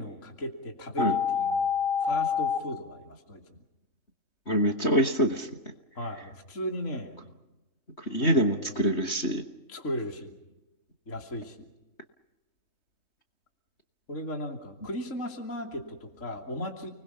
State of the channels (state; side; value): late; right; 3.2 ms